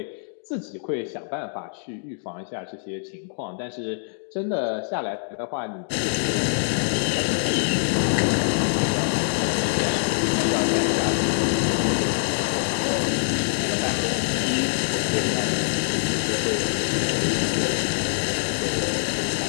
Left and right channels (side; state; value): right; silent; digital silence